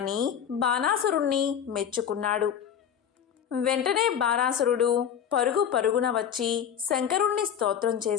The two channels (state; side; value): quieter; right; 8.7 dB